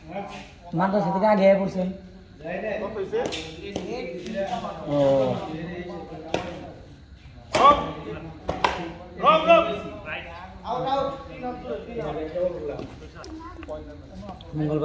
মাদ্রাসা থেকে আগে পড়ছেন? ও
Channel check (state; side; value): identical; both; correlation 1.00